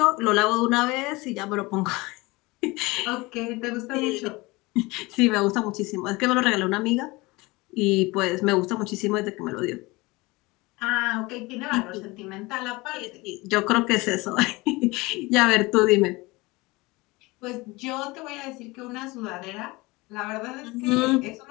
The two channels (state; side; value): quieter; right; 22.9 dB